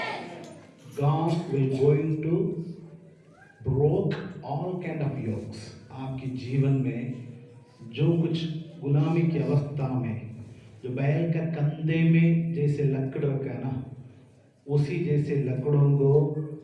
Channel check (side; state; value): both; identical; correlation 1.00